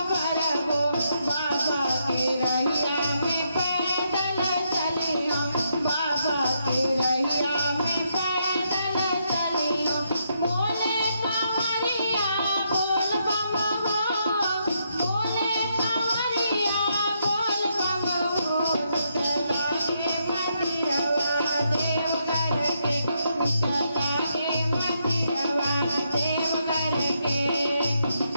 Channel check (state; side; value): inverted; both; correlation -0.77